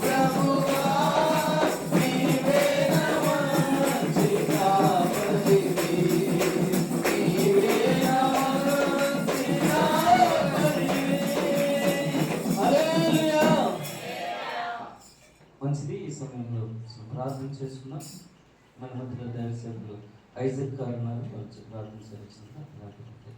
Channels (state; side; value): identical; both; correlation 1.00